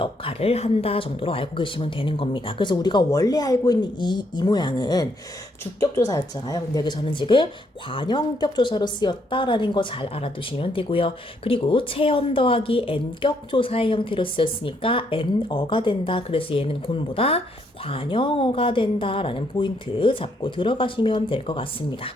한다 정도로 알고 계시면 되는 겁니다. 그래서 우리가 원래 알고 있는 이 모양은 주격 조사였잖아요. 근데 여기서는 지금 관형격 조사로 쓰였다라는 거 잘 알아두시면 되고요. 그리고 체험 더하기 n격 조사의 형태로 쓰였으니까 n어가 된다. 그래서 얘는 곤보다 관형어가 된다라는 포인트 잡고 들어가시면 될 것 같습니다.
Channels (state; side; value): normal; both; correlation 0.73